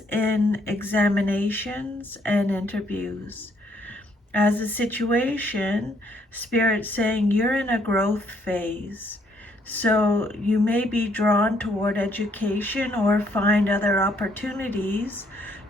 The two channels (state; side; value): normal; both; correlation 0.68